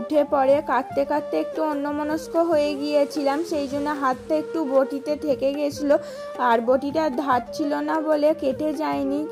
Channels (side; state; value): both; identical; correlation 1.00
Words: পড়ে। কাটতে কাটতে একটু অন্যমনস্ক হয়ে গিয়েছিলাম, সেই জন্য হাতটা একটু বটিতে থেকে গেছিল। আর বটিটা ধার ছিল না বলে কেটে যায়নি।